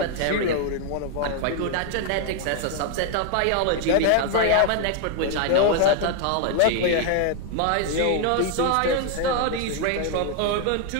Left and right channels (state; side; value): different; both; correlation 0.00